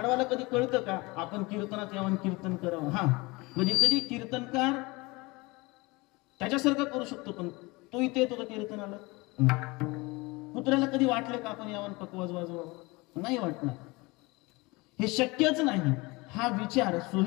कधी कळतं का आपण कीर्तनात यावं कीर्तन करावं? हा, म्हणजे कधी कीर्तनकार त्याच्यासारखं करू शकतो, पण तो इथे येतो का कीर्तनाला? कुत्र्याला कधी वाटलं का आपण यावं पकवाज वाजवावं? नाही वाटणार. हे शक्यच नाही. हा विचार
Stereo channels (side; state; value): right; quieter; 24.3 dB